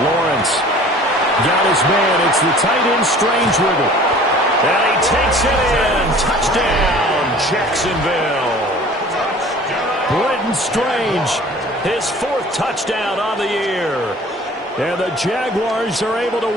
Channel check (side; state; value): both; normal; correlation 0.47